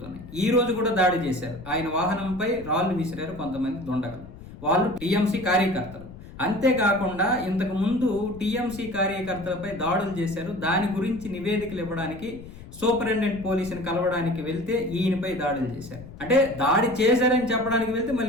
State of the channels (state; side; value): noise; left; rumble, 16 dB below the sound